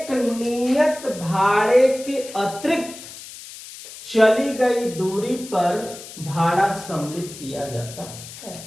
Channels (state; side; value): noise; left; hiss, 14 dB below the sound